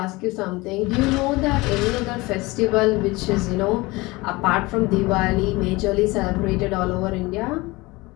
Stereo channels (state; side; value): quieter; right; 22.3 dB